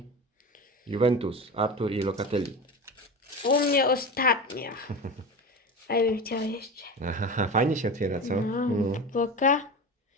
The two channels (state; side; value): normal; both; correlation 0.27